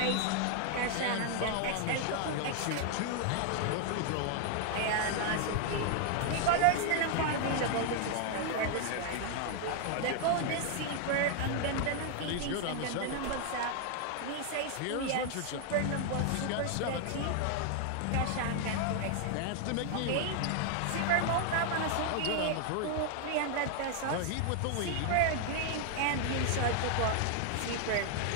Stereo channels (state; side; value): different; both; correlation 0.00